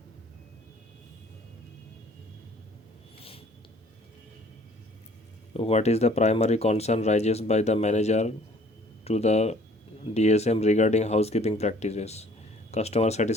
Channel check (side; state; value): both; normal; correlation 0.55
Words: What is the primary concern raises by the manager to the DSM regarding housekeeping practices? Customer